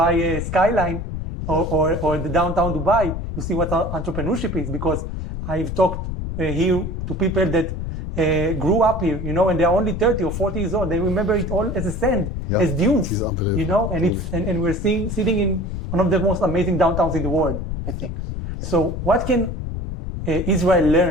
skyline or the downtown Dubai, you see what entrepreneurship is, because I've talked here to people that grew up here, and they're only 30 or 40 years old. They remember it all as a sand, as dunes, and we're sitting in one of the most amazing downtowns in the world, I think. So what can Israel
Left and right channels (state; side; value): noise; left; rumble, 4 dB below the sound